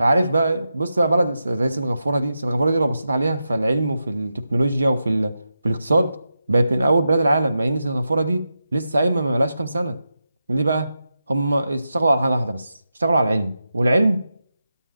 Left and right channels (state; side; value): inverted; both; correlation -0.89